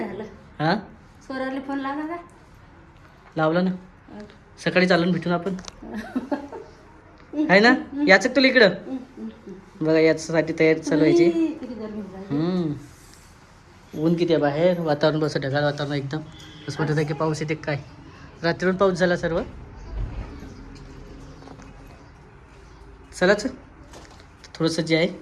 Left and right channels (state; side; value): identical; both; correlation 1.00